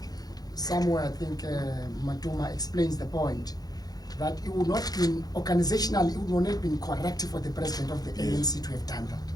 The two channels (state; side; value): late; right; 0.19 ms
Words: somewhere, Matuma explains the point that it would not been organizationally, it would not have been correct for the president of the ANC to have done that.